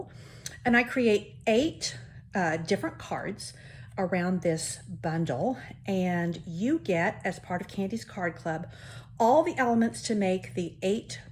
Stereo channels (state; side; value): identical; both; correlation 1.00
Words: and I create 8 different cards around this bundle, and you get, as part of Candy's Card Club, all the elements to make the 8